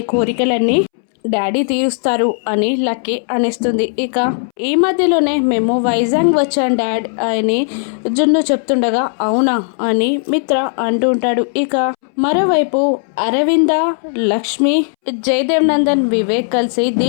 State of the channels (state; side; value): silent; right; 67 dB below the other